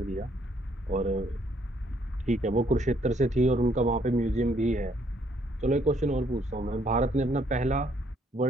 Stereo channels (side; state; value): both; normal; correlation 0.68